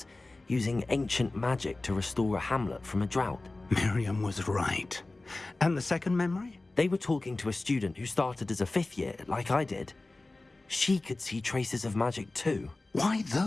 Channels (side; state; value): right; quieter; 3.1 dB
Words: using ancient magic to restore a hamlet from a drought. Miriam was right. And the second memory? They were talking to a student who started as a 5th year, like I did. She could see traces of magic too. Why